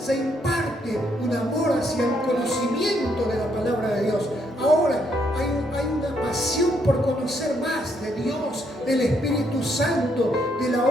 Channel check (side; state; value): both; normal; correlation 0.73